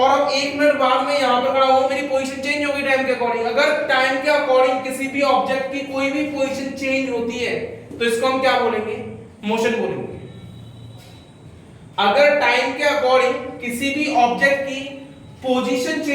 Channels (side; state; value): both; identical; correlation 1.00